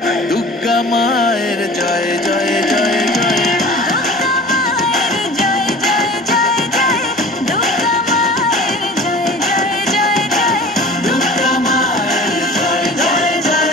দুর্গা মায়ের জয় জয় জয় জয়।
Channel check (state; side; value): normal; both; correlation 0.42